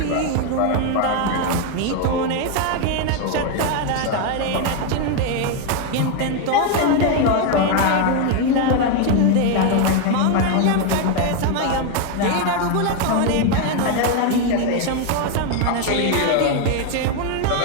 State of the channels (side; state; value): both; different; correlation 0.01